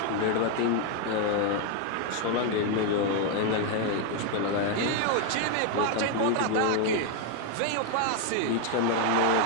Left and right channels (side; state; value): both; different; correlation 0.01